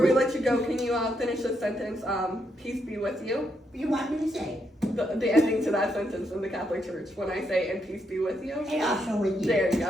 let you go, can you finish this sentence? Peace be with you. You want me to say? The ending to that sentence in the Catholic Church when I say, and peace be with you. And also with you. There you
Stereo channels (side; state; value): both; normal; correlation 0.78